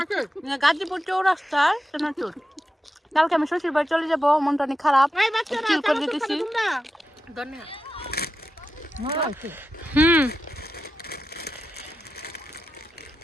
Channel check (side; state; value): both; normal; correlation 0.90